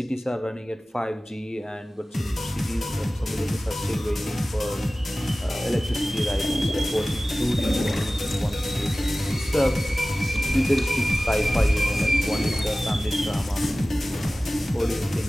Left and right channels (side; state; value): both; normal; correlation 0.97